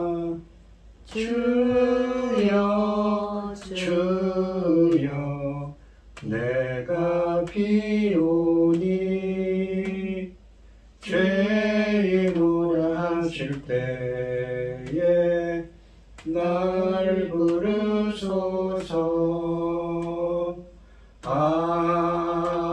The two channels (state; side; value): identical; both; correlation 1.00